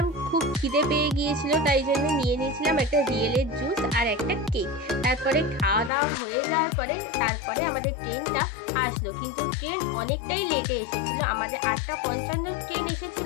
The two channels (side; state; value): right; drops out; at 5.9 s